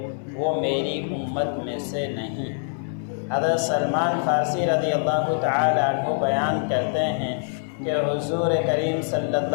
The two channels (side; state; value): right; silent; 62 dB below the other